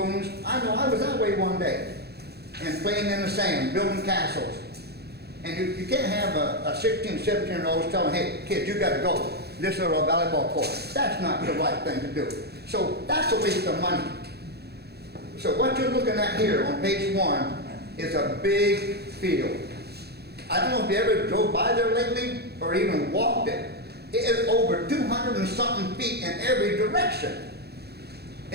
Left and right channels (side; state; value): left; late; 0.47 ms